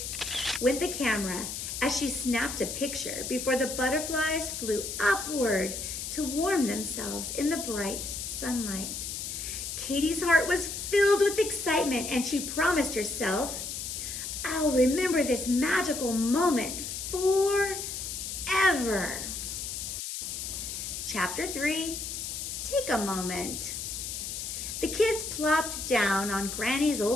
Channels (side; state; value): left; noise; hiss, 5 dB below the sound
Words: went the camera as she snapped a picture before the butterflies flew upward to warm themselves in the bright sunlight. Katy's heart was filled with excitement, and she promised herself, "I'll remember this magical moment forever." Chapter 3, Take a Moment. The kids plopped down on Granny's